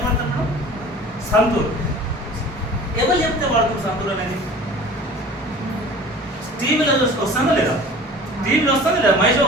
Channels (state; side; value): normal; both; correlation 0.43